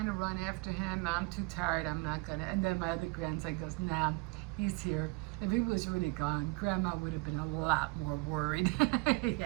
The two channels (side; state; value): left; quieter; 26.3 dB